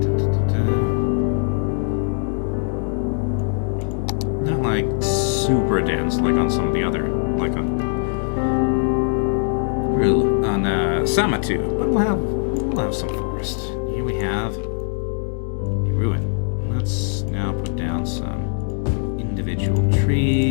Not like super dense, like on some of the other, like on Sumatra, but we'll have some forest. Here we have a ruin. Let's now put down some individual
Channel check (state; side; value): silent; right; 65 dB below the other